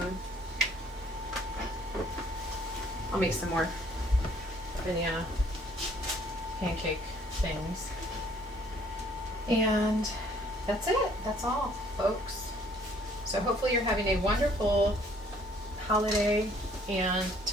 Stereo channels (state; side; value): normal; both; correlation 0.60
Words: I'll make some more banana pancake things. And that's it. That's all, folks. So hopefully you're having a wonderful holiday. And